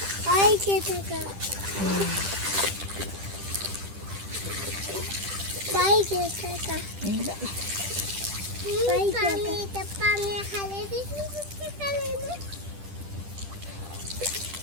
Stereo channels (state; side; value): late; left; 10 ms